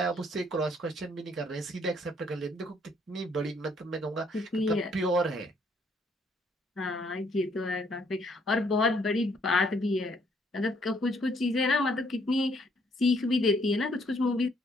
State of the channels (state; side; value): normal; both; correlation 0.67